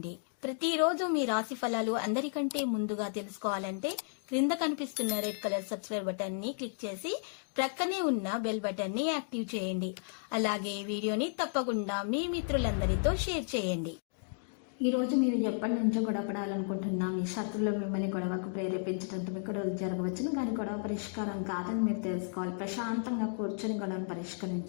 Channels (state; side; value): silent; right; digital silence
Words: ప్రతిరోజు మీ రాశి ఫలాలు అందరికంటే ముందుగా తెలుసుకోవాలంటే క్రింద కనిపిస్తున్న రెడ్ కలర్ సబ్స్క్రైబ్ బటన్ ని క్లిక్ చేసి ప్రక్కనే ఉన్న బెల్ బటన్ ని యాక్టివ్ చేయండి. అలాగే ఈ వీడియోని తప్పకుండా మీ మిత్రులందరితో షేర్ చేయండి. ఈ రోజు మీరు ఎప్పటి నుంచో గొడవపడాలనుకుంటున్నా మీ శత్రులు మిమ్మల్ని గొడవకు ప్రేరేపించడంతో మీకు గొడవలు జరగవచ్చును, కానీ గొడవ పరిష్కారం కాదని మీరు తెలుసుకోవాలి. ప్రశాంతంగా కూర్చొని గొడవను